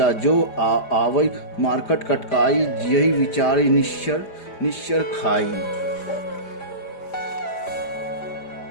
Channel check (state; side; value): late; right; 4.9 ms